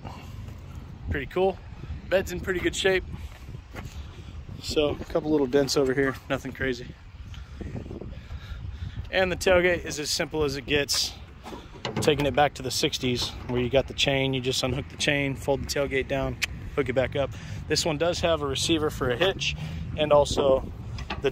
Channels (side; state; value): both; identical; correlation 1.00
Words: Pretty cool. Bed's in pretty good shape. So, a couple little dents over here, nothing crazy. And the tailgate is as simple as it gets. Taking it back to the 60s, where you got the chain, you just unhook the chain, fold the tailgate down, hook it back up. This one does have a receiver for a hitch, and also the